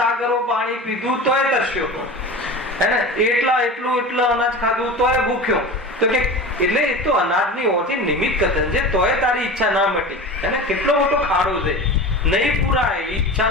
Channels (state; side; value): normal; both; correlation 0.32